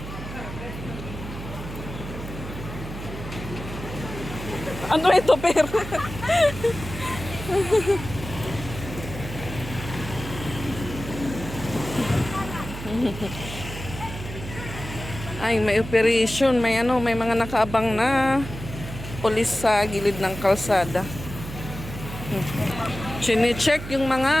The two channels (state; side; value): noise; right; hum, 10 dB below the sound